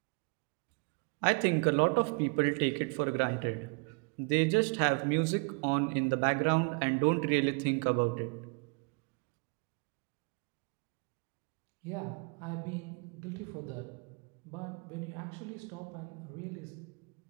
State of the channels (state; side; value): quieter; left; 34.0 dB